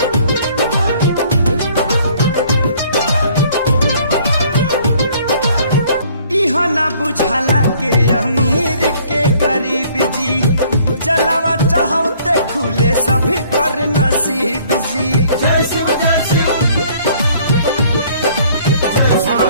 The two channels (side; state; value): both; inverted; correlation -0.58